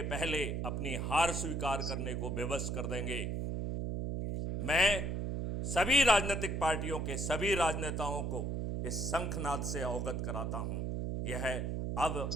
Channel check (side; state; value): right; noise; hum, 1 dB below the sound